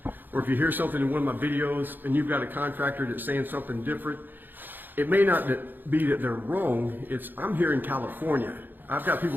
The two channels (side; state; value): left; late; 0.091 ms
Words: or if you hear something in one of my videos and you've got a contractor that's saying something different, it may not be that they're wrong. I'm here in California. I've got people